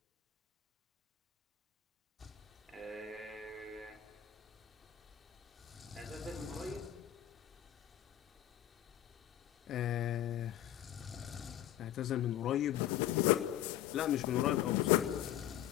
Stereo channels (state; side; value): quieter; right; 12.1 dB